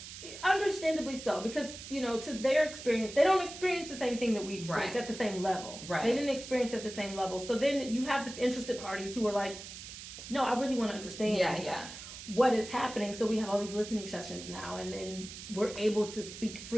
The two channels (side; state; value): right; noise; hiss, 12 dB below the sound